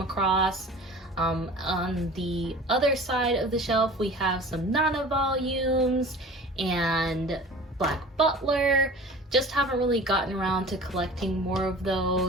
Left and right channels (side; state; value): both; normal; correlation 0.40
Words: across. On the other side of the shelf we have some Nana volumes and Black Butler. Just haven't really gotten around to collecting more of